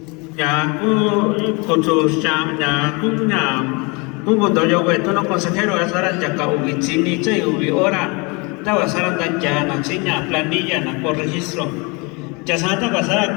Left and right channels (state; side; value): quieter; right; 28.9 dB